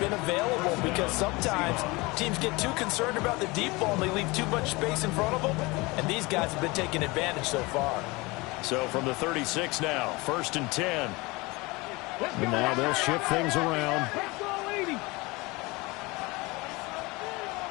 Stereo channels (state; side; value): quieter; right; 24.0 dB